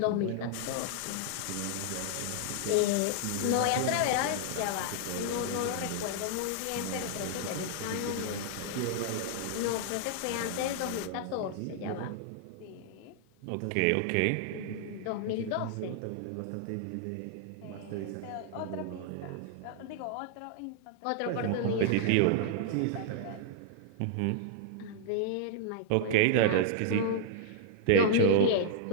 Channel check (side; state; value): both; different; correlation -0.01